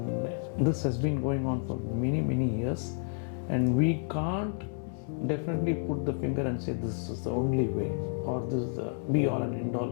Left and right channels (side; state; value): right; silent; digital silence